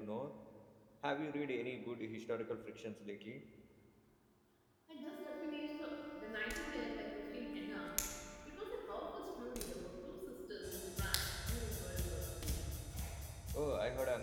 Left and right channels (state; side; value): identical; both; correlation 1.00